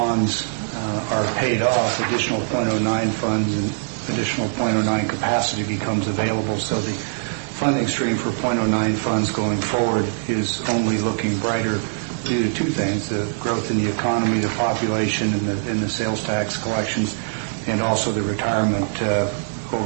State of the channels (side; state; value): left; silent; digital silence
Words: are paid off, additional .09 funds and additional .09 capacity becomes available. So the funding stream for .09 funds going forward is only looking brighter due to two things: the growth in the economy, the population, and the sales tax collections, and also the retirement